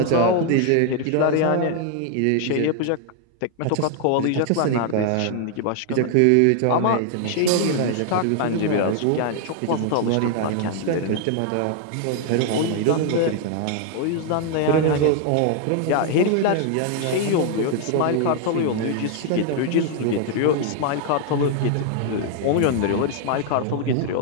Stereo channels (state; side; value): different; both; correlation 0.00